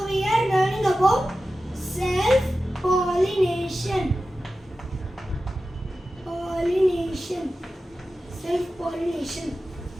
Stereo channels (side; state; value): both; normal; correlation 0.94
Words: we are learning about self-pollination. Self-pollination.